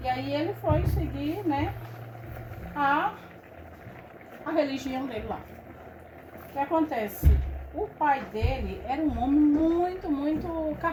E aí ele foi seguir, né, a religião dele lá. O que acontece? O pai dele era um homem muito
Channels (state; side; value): identical; both; correlation 1.00